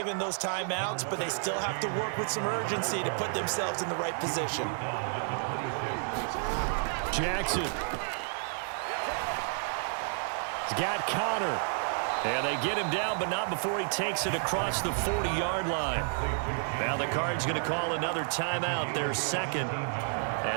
those timeouts, but they still have to work with some urgency to put themselves in the right position. Jackson. He's got Connor. And they get him down, but not before he takes it across the 40-yard line. Now the Cards going to call another timeout, their second,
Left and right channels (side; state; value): left; silent; 57 dB below the other